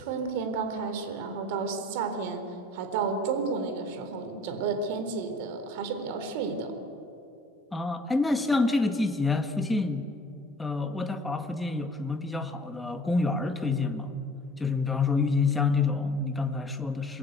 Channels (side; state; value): both; normal; correlation 0.49